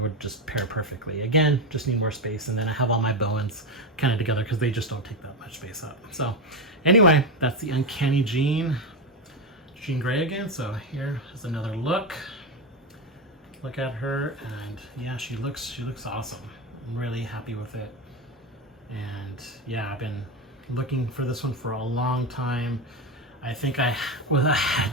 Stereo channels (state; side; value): normal; both; correlation 0.14